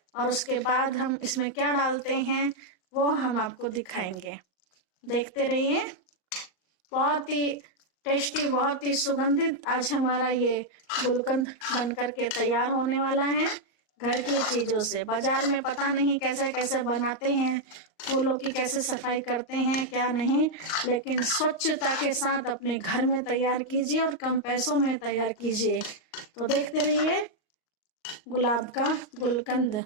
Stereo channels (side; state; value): right; late; 38 ms